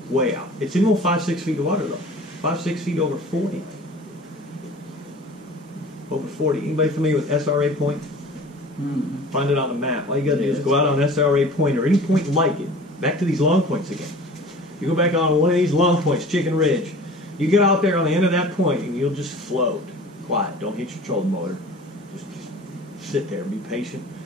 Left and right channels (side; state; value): both; normal; correlation 0.42